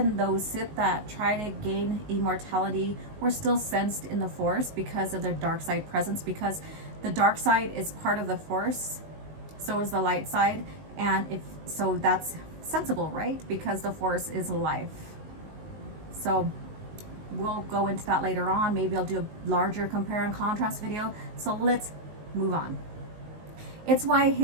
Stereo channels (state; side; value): late; left; 19 ms